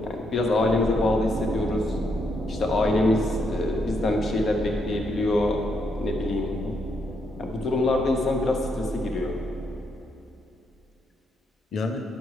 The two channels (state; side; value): normal; both; correlation 0.77